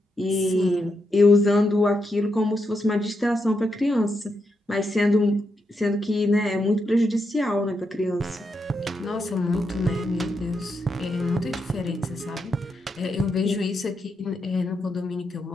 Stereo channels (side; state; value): both; normal; correlation 0.83